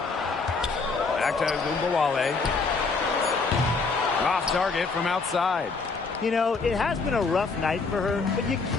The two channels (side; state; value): right; quieter; 4.3 dB